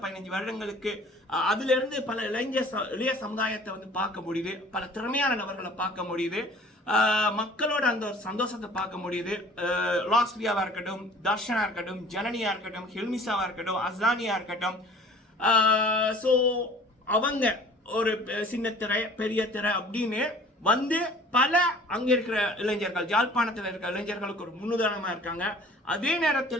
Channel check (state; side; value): normal; both; correlation 0.49